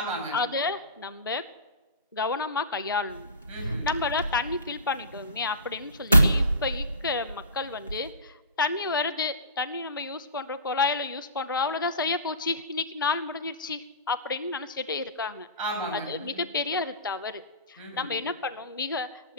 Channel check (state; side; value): inverted; both; correlation -0.34